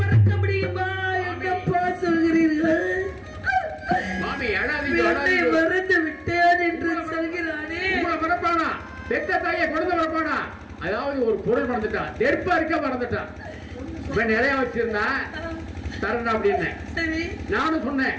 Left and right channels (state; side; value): identical; both; correlation 1.00